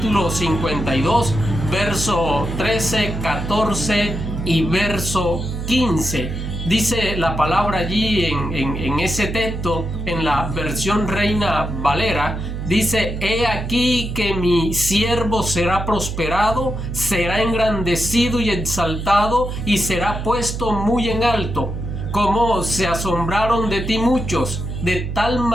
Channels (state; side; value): noise; right; hum, 5 dB below the sound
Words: 52, verso 13, 14 y verso 15. Dice la palabra allí en ese texto, en la versión Reina Valera, dice: he aquí que mi siervo será prosperado, será engrandecido y exaltado, y será puesto muy en alto. Como se asombraron de ti muchos, de tal